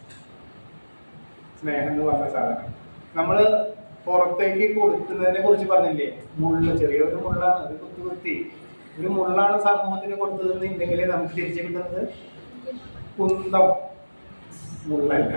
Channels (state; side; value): inverted; both; correlation -1.00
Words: സ്നേഹം എന്ന് പറഞ്ഞ സാധനം നമ്മള് പുറത്തേക്ക് കൊടുക്കുന്നതിനെ കുറിച്ച് പറഞ്ഞില്ലേ? ചെറിയൊരു മുള്ളാണ്, അത് കുത്തി ഒരു മുള്ളാണ് സമൂഹത്തിന് കൊടുത്തതെന്നുണ്ടെങ്കിലേ നമുക്ക് തിരിച്ചു കിട്ടുന്നത് കുന്തം, മുള്ളല്ല.